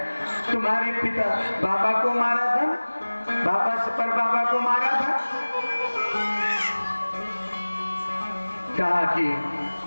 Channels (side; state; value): both; inverted; correlation -1.00